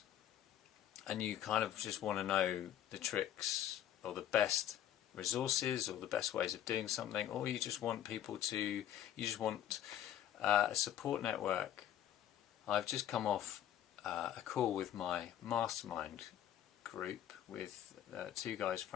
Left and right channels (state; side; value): quieter; right; 11.1 dB